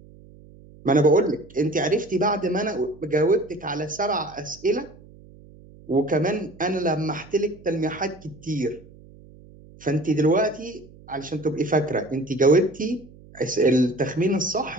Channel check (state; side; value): noise; right; hum, 22 dB below the sound